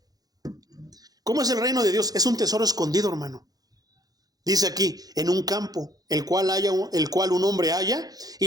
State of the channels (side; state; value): left; late; 0.18 ms